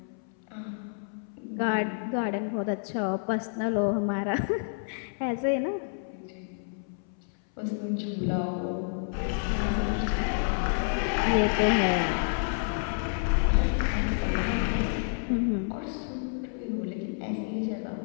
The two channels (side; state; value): right; silent; 58 dB below the other